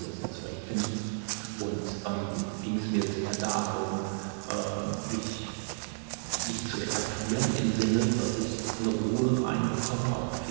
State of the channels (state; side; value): silent; left; digital silence